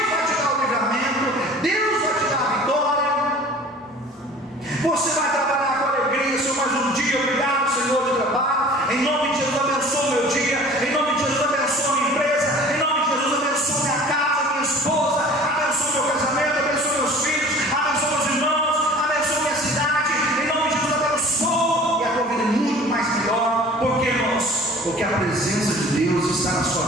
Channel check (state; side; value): normal; both; correlation 0.46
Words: vai te dar o livramento. Deus vai te dar a vitória. Você vai trabalhar com alegria. Senhor, mais um dia. Obrigado, Senhor, de trabalho. Em nome de Jesus, abençoa o meu dia. Em nome de Jesus, abençoa a minha empresa. Em nome de Jesus, abençoa minha casa, minha esposa. Abençoa meu casamento. Abençoa meus filhos. Abençoa meus irmãos. Abençoa minha cidade. Em nome de Jesus, abençoa. E a tua vida é muito mais melhor. Por que, irmãos? Porque a presença de Deus está na sua